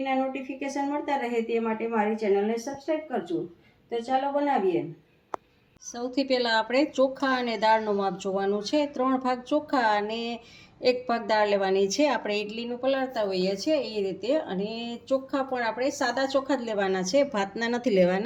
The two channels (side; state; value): both; identical; correlation 1.00